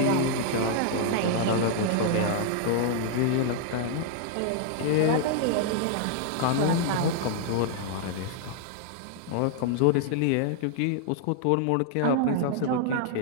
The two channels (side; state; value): both; different; correlation 0.00